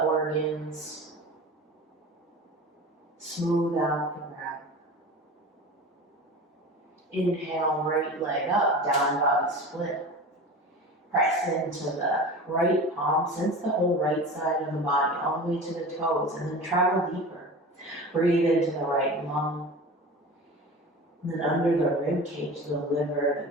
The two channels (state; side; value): normal; both; correlation 0.33